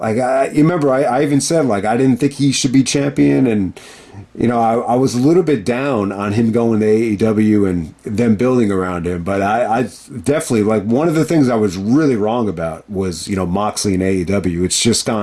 you remember, I even said, like, I didn't think he should be champion. And, I was a little bit down on him going to AEW and them building around him. But I definitely, like, one of the things I was really wrong about was, Moxley and AEW. It's just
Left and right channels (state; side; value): identical; both; correlation 1.00